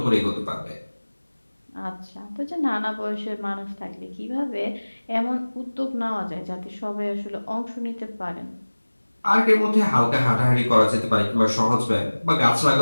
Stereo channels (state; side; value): inverted; both; correlation -1.00